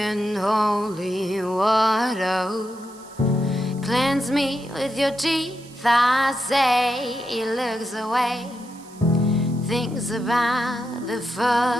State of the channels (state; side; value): noise; right; hiss, 23 dB below the sound